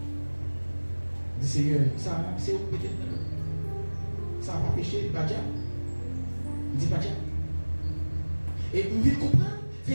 dit Seigneur, ça c'est où peut-être ça n'a pas péché, pas diable. Il dit pas diable. Et vous devez comprendre,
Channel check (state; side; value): inverted; both; correlation -1.00